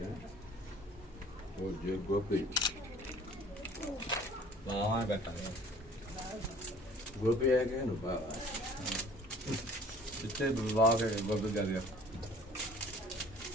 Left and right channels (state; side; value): normal; both; correlation 0.51